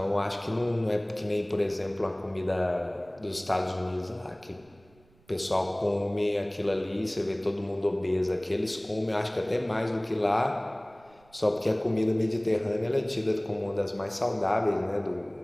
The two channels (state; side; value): noise; right; rumble, 30 dB below the sound